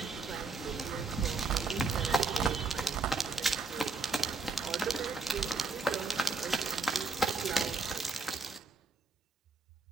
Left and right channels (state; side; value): quieter; left; 3.9 dB